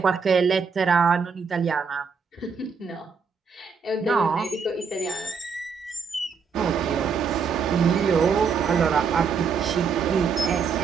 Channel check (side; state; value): left; quieter; 5.7 dB